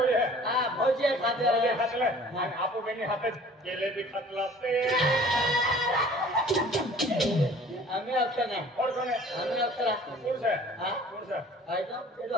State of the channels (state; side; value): normal; both; correlation 0.49